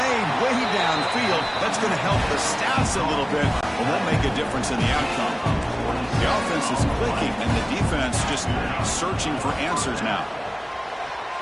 way downfield. That's going to help the stats a little bit, but won't make a difference in the outcome. The offense is clicking, and the defense just searching for answers now.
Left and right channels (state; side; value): identical; both; correlation 1.00